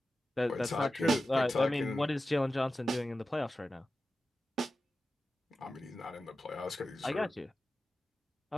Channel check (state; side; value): normal; both; correlation 0.93